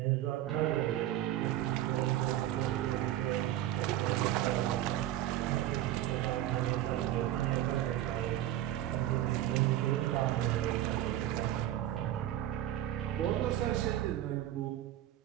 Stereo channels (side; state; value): left; quieter; 13.3 dB